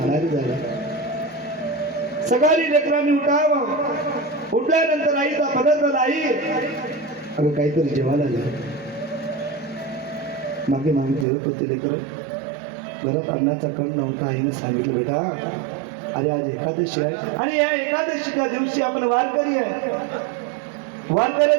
झाला. सकाळी लेकरांनी उठावं. उठल्यानंतर आईचा पदार्थ आई अगं काहीतरी जेवायला आलं. मागे मागे जेवत होते लेकर. घरात अन्नाचा कण नव्हता. आईनं सांगितलं बेटा अरे आज एकादशी आहे आणि या एकादशीच्या दिवशी आपण वारकरी आहे.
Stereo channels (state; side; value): drops out; left; at 11.2 s